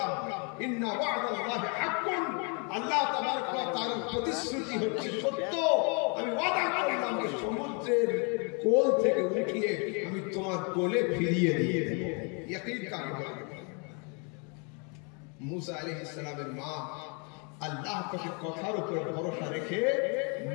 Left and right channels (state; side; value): quieter; right; 35.6 dB